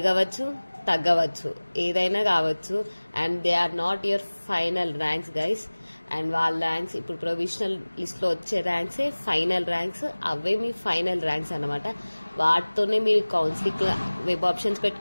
తగ్గవచ్చు, ఏదైనా కావచ్చు. And they are not your final ranks guys. And వాళ్ళ ర్యాంక్స్ ఇప్పుడు ప్రొవిజనల్ లిస్ట్ లో వచ్చే ర్యాంక్సే ఫైనల్ ర్యాంక్స్, అవే మీ ఫైనల్ ర్యాంక్స్ అనమాట. వాటితోనే మీరు కౌన్సిలింగ్ వెబ్ ఆప్షన్స్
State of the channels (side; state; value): both; inverted; correlation -1.00